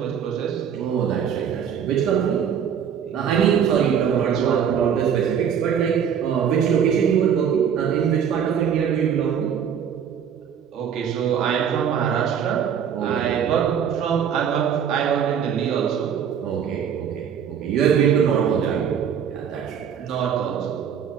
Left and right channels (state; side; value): quieter; left; 8.1 dB